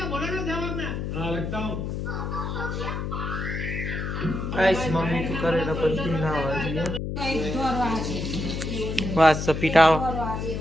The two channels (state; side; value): noise; left; hum, 3 dB below the sound